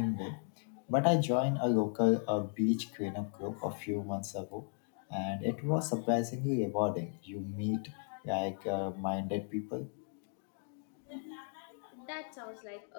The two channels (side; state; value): right; silent; 54 dB below the other